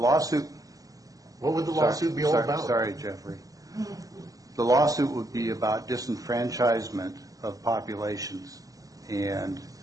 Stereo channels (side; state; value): left; late; 0.17 ms